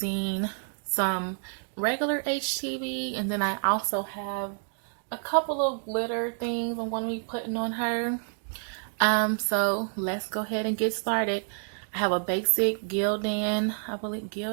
some regular HTV, and then I also have a couple of glitter things I'm going to be putting on her. So let's go ahead and get started. I have a basic Gildan,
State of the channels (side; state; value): left; silent; 59 dB below the other